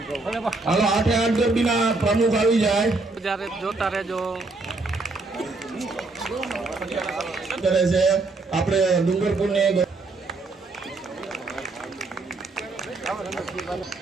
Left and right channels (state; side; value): quieter; left; 3.4 dB